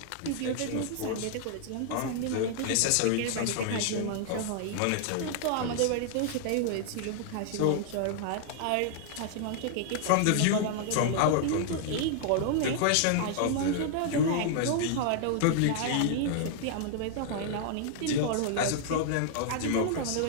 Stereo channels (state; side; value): different; both; correlation -0.01